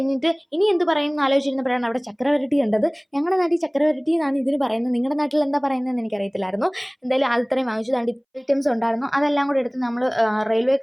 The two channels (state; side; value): identical; both; correlation 1.00